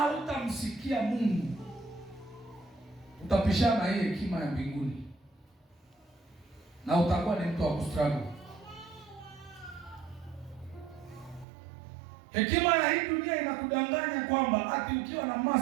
Mungu, utapishana hii hekima ya mbinguni na utakuwa ni mtu wa kustruggle. Hekima ya hii dunia inakudanganya kwamba ati ukiwa na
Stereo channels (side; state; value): left; drops out; at 11.5 s